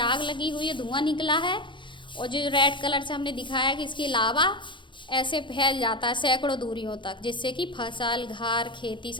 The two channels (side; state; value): right; late; 0.23 ms